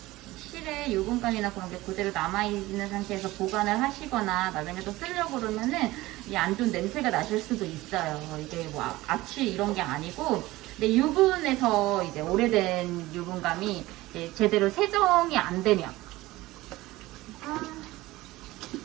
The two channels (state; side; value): quieter; left; 18.5 dB